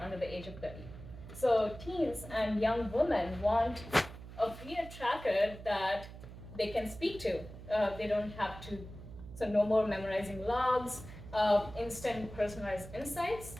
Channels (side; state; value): right; noise; hum, 14 dB below the sound